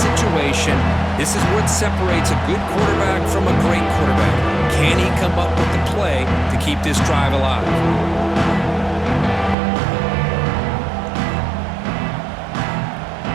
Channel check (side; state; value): left; drops out; at 9.6 s